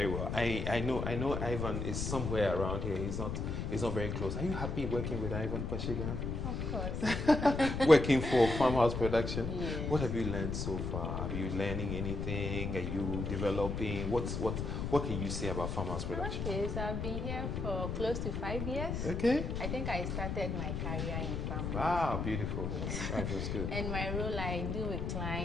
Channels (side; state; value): left; noise; rumble, 2 dB below the sound